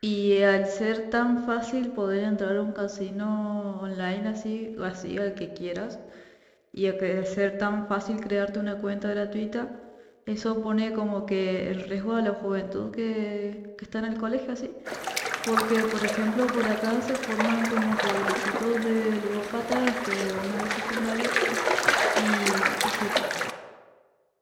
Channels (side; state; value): both; identical; correlation 1.00